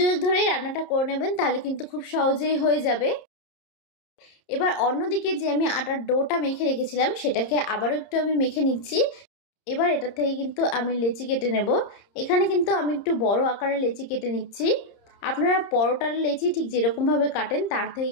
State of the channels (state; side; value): late; right; 30 ms